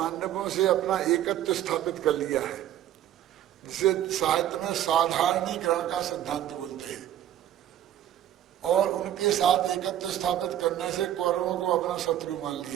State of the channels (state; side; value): quieter; left; 11.7 dB